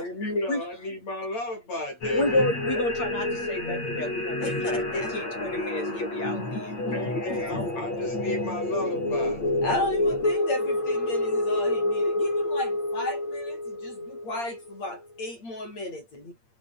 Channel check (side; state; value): right; late; 8.7 ms